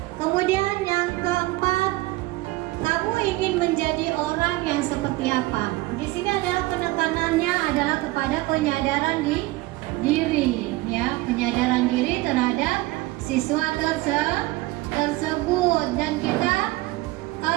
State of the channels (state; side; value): quieter; left; 19.7 dB